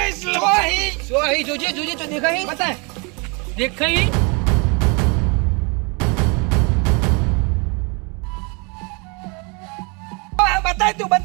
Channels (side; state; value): left; quieter; 31.4 dB